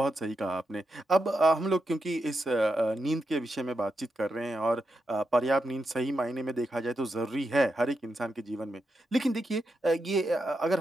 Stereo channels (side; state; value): both; normal; correlation 0.85